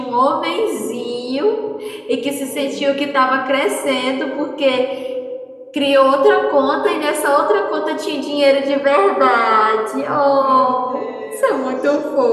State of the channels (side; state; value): both; identical; correlation 1.00